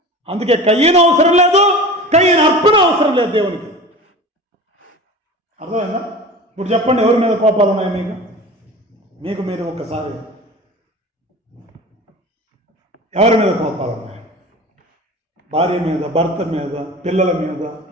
అందుకే కయ్యను అవసరం లేదు, కయ్యను అర్పణ అవసరం లేదు దేవునికి. అర్థమైందా? ఇప్పుడు చెప్పండి, ఎవరి మీద కోపాలు ఉన్నాయి మీకు మీరు ఒక్కసారి ఎవరి మీద కోపాలు ఉన్నాయి? భార్య మీద, భర్త మీద, పిల్లల మీద,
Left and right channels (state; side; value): normal; both; correlation 0.35